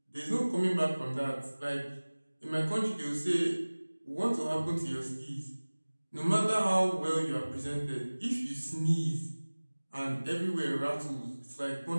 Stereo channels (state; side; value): inverted; both; correlation -1.00